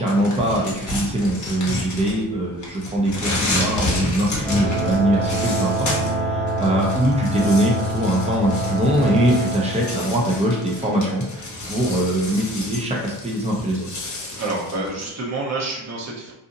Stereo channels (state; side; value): normal; both; correlation 0.52